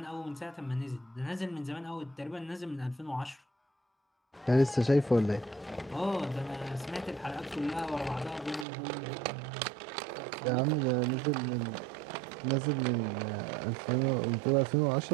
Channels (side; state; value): left; drops out; at 8.7 s